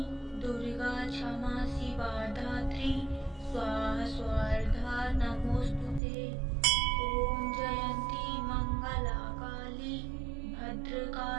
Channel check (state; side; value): drops out; left; at 6.0 s